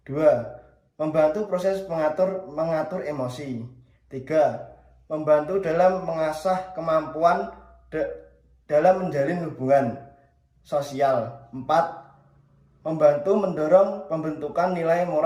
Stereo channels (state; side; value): identical; both; correlation 1.00